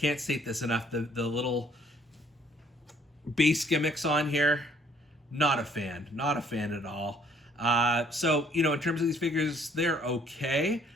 state this enough, the little base gimmicks on here, not a fan at all. So in terms of these figures, they're okay.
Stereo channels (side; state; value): both; normal; correlation 0.61